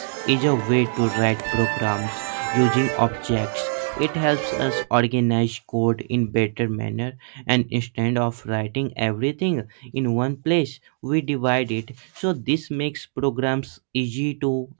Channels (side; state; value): left; silent; digital silence